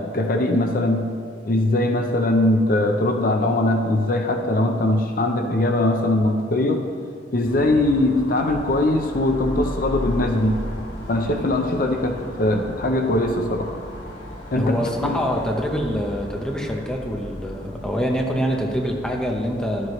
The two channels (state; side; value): normal; both; correlation 0.58